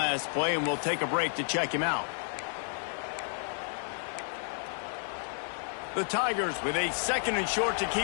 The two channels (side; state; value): right; silent; 57 dB below the other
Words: play, and we'll take a break to check him out. The Tigers with a 2nd and short to